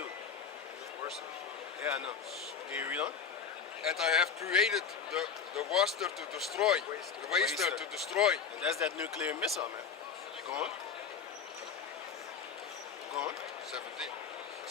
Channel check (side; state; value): right; quieter; 6.6 dB